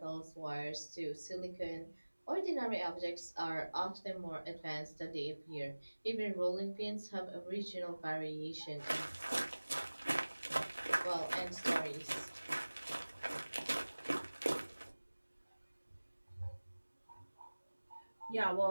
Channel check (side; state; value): both; inverted; correlation -1.00